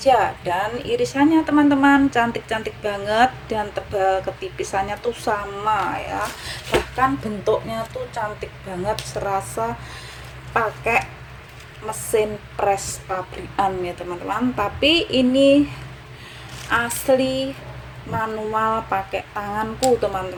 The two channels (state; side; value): identical; both; correlation 1.00